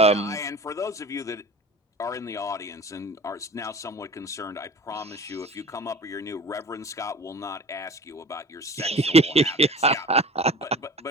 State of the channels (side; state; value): both; normal; correlation 0.40